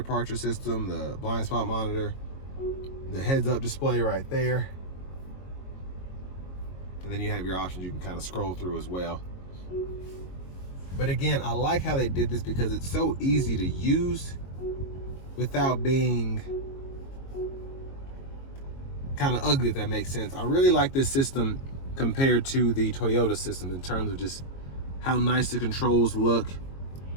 system, the blind spot monitor, the heads up display right there. And then you have your options you can kind of scroll through as well. But again, I like how they did this because it's so easy to use without being kind of ugly, if that makes sense. I really like this system compared to the Toyota system in terms of just how nice the controls look,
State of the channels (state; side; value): late; right; 22 ms